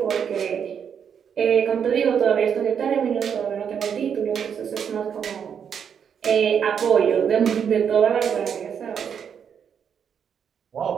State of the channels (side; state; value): left; quieter; 7.6 dB